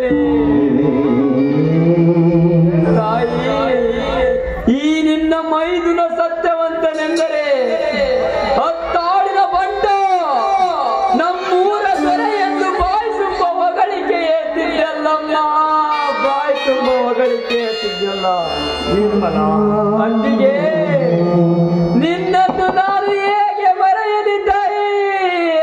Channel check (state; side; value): identical; both; correlation 1.00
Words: ತಾಯಿ ಈ ನಿನ್ನ ಮೈದುನ ಸತ್ಯವಂತನೆಂದರೆ ಹತ್ತಾಡಿನ ಬಂಡ ನಮ್ಮೂರ ದೊರೆ ಎಂದು ಬಾಯಿ ತುಂಬ ಹೊಗಳಿಕೆ ಎತ್ತಿದ್ದಲ್ಲಮ್ಮ, ಬಾಯಿ ತುಂಬ ಹೊಗಳಿಕೆ ಎತ್ತಿದ್ದಲ್ಲ ನಿರ್ಮಲ. ಅತ್ತಿಗೆ ನಿನ್ನನ್ನು ನಾನು ಹೇಗೆ ಮರೆಯಲಿ ತಾಯಿ,